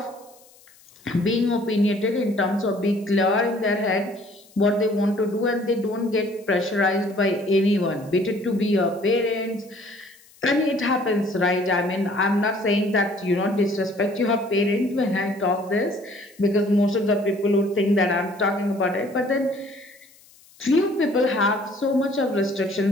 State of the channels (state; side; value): noise; left; hiss, 27 dB below the sound